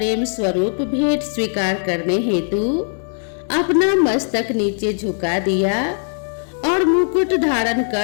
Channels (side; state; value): right; silent; digital silence